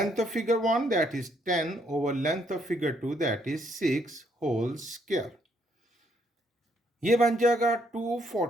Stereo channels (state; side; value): normal; both; correlation 0.70